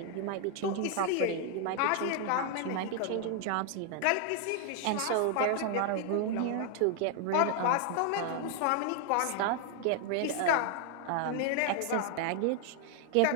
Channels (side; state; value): both; different; correlation 0.00